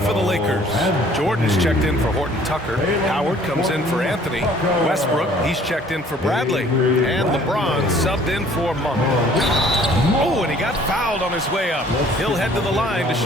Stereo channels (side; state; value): both; normal; correlation 0.55